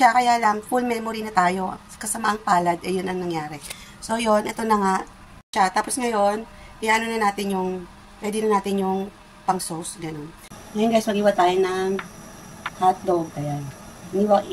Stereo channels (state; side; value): identical; both; correlation 1.00